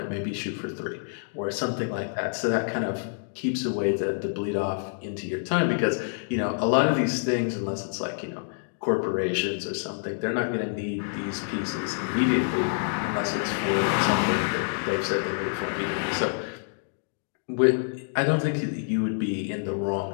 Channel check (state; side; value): silent; right; digital silence